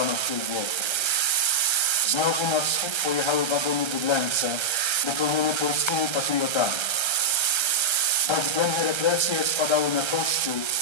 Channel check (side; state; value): right; late; 1.3 ms